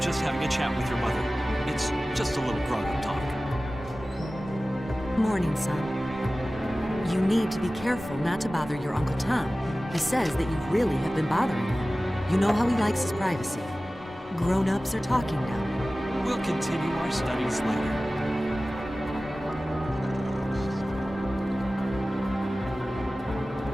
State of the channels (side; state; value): both; normal; correlation 0.97